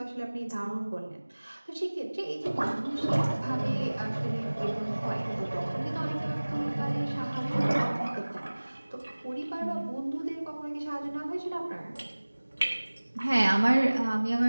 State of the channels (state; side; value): inverted; both; correlation -1.00